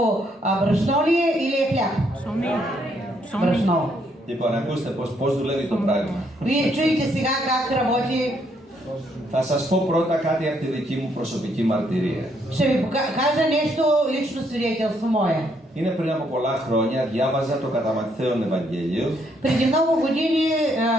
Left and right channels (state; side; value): normal; both; correlation 0.72